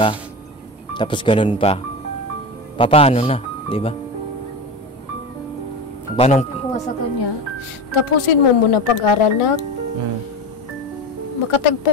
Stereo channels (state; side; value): normal; both; correlation 0.22